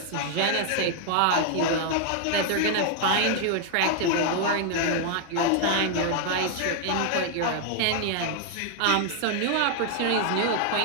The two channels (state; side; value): different; both; correlation 0.00